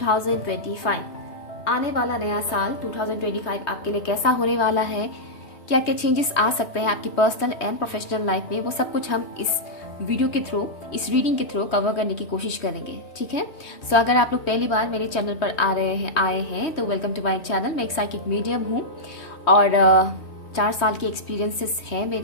आने वाला नया साल 2025 आपके लिए कैसा होने वाला है, क्या क्या चेंजेस आ सकते हैं आपकी पर्सनल एंड प्रोफेशनल लाइफ में, वो सब कुछ हम इस वीडियो के थ्रू, इस रीडिंग के थ्रू कवर करने की कोशिश करेंगे। ठीक है। सो अगर आप लोग पहली बार मेरे चैनल पर आए हैं तो वेलकम टू माय चैनल। मैं एक साइकिक मीडियम हूँ और 4 साल के एक्सपीरियंसेस हैं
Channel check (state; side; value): late; right; 3.1 ms